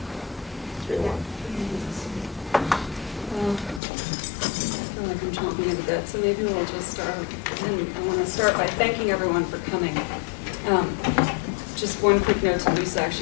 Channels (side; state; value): right; drops out; at 3.8 s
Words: So maybe we'll just start, and I want to start by thanking everyone for coming. Just one quick note to Lisa,